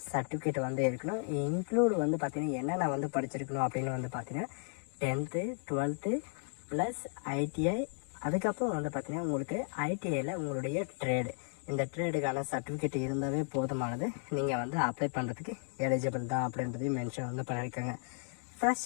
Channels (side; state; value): right; silent; 55 dB below the other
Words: சர்டிஃபிகேட் வந்து இருக்கணும். இன்க்ளூட் வந்து பார்த்தீங்கன்னா என்னென்ன வந்து படிச்சிருக்கணும் அப்படின்னு வந்து பார்த்தீங்கன்னா 10th 12th ப்ளஸ் ITI. அதுக்கப்புறம் வந்து பார்த்தீங்கன்னா உங்களுக்கு ITIயில் உங்களுடைய ட்ரேடு, இந்த ட்ரேடுக்கான சர்டிஃபிகேட் இருந்தாவே போதுமானது. நீங்கள் வந்து அப்ளை பண்ணுறதுக்கு எலிஜிபிள் தான் அப்படின்றதையும் மென்ஷன் வந்து பண்ணியிருக்காங்க.